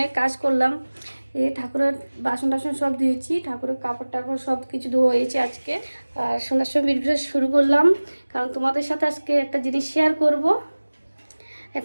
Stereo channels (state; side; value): inverted; both; correlation -1.00